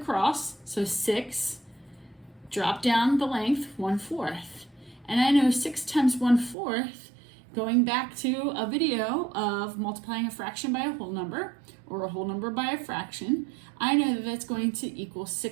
so 6, drop down the length 1/4. And I know 6 times 1/4, going back to a video of multiplying a fraction by a whole number, or a whole number by a fraction, I know that that's going to equal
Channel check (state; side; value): drops out; left; at 6.6 s